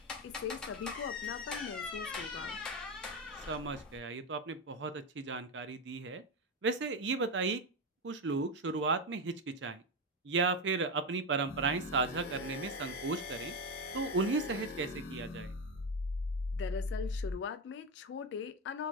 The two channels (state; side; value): normal; both; correlation 0.13